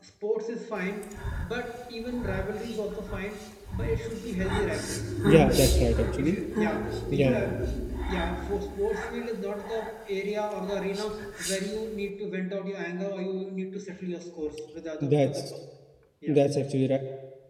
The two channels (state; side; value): identical; both; correlation 1.00